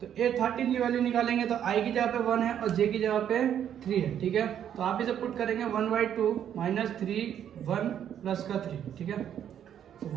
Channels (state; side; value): quieter; left; 9.6 dB